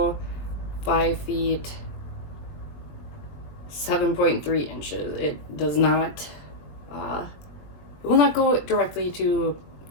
5 feet 7.3 inches. It does not, it will not go directly to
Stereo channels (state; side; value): late; right; 20 ms